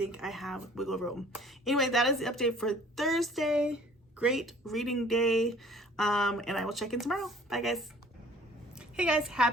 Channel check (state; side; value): normal; both; correlation 0.52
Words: I have wiggle room. Anyway, that is the update for Thursday. Great reading day, and I will check in tomorrow. Bye guys. Hey guys,